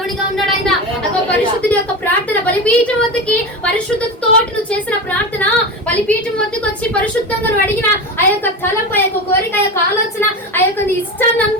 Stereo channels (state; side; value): normal; both; correlation 0.23